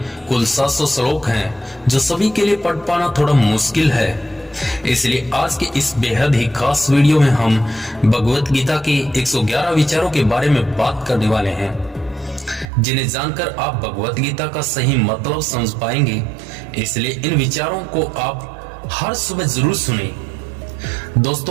कुल 700 श्लोक हैं जो सभी के लिए पढ़ पाना थोड़ा मुश्किल है। इसलिए आज के इस बेहद ही खास वीडियो में हम भगवत गीता के 111 विचारों के बारे में बात करने वाले हैं, जिन्हें जानकर आप भगवत गीता का सही मतलब समझ पाएंगे। इसलिए इन विचारों को आप हर सुबह जरूर सुनें।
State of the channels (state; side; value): drops out; left; at 12.7 s